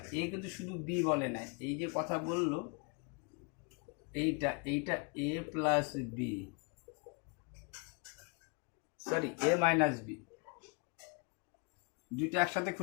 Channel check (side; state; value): right; quieter; 33.9 dB